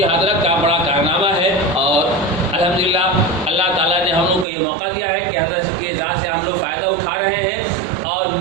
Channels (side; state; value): left; drops out; at 4.5 s